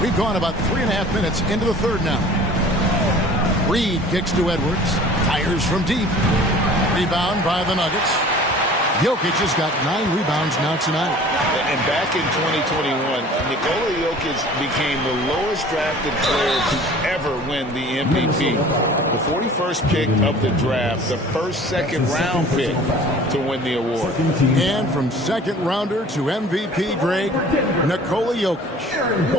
We've gone about 3.5 minutes into the third now. Reed kicks to Edwards. Fires from deep. Rebound by the Nuggets. Jokic has got 9 rebounds now tonight. And back in 2021, Nikola Jokic became the lowest drafted player to ever win the MVP. The 41st pick of the draft, the first second-round pick to win the award. And from second-rounder to MVP, Greg, Nikola Jokic.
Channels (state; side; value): normal; both; correlation 0.46